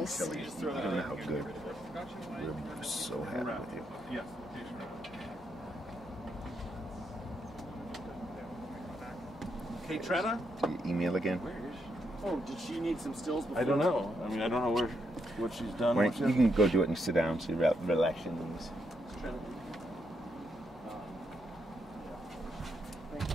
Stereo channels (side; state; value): both; normal; correlation 0.79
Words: You don't know how good. We're so happy with you. Yes. Kate Trena? Do you email again? Where is she? Oh, did she need some stills before? I don't know. I mean, I don't know what she's done. Right, you can go do it and sit down so you relax your knees. Thank